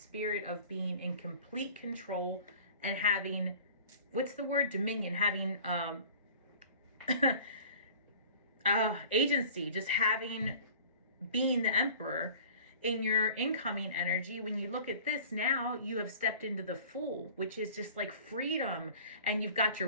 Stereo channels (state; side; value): inverted; both; correlation -0.46